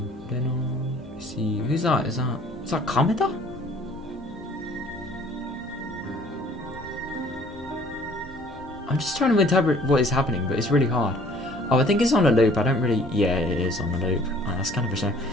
Reno. See who's that? Is that Kameda? I'm just trying to interpret what is happening, but it's really hard. Oh, I think it's on a loop. I don't really... Yeah, it is on a loop. Oh, that's kind of a shame.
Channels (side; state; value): left; noise; rumble, 25 dB below the sound